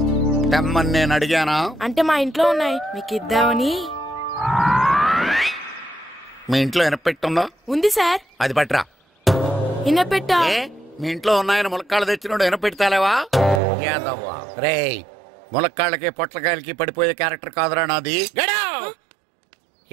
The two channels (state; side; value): drops out; left; at 13.6 s